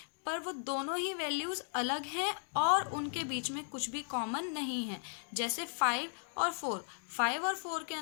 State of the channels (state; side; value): silent; right; 54 dB below the other